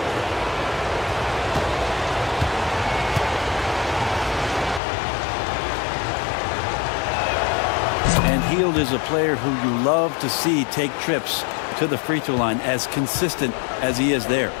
Hield is a player who you love to see take trips to the free throw line, as consistent as he is there.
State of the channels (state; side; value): drops out; right; at 4.8 s